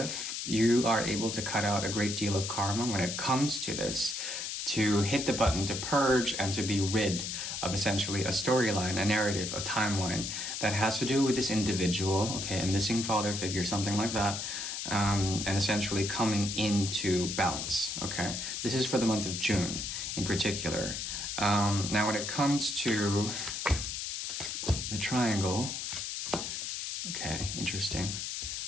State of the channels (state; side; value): noise; left; hiss, 4 dB below the sound